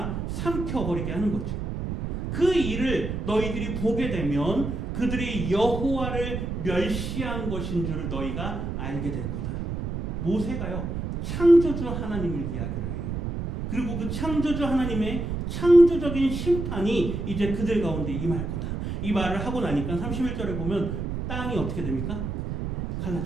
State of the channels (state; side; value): noise; right; rumble, 4 dB below the sound